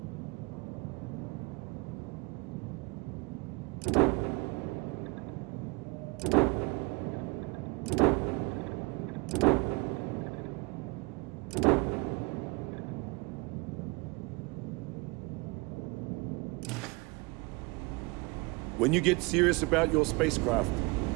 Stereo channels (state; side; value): quieter; left; 26.8 dB